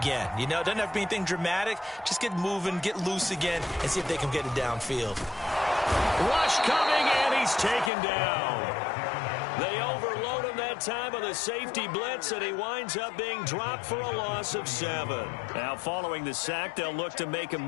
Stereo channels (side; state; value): right; drops out; at 7.9 s